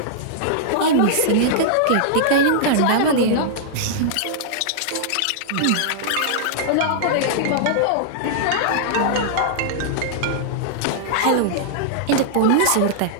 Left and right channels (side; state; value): both; different; correlation -0.01